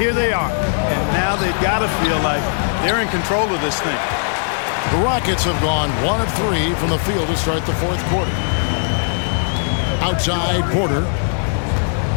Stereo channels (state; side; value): silent; right; 62 dB below the other